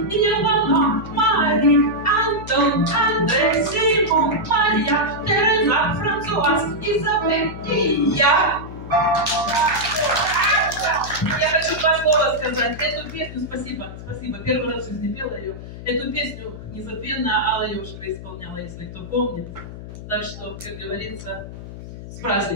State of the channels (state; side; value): noise; left; hum, 12 dB below the sound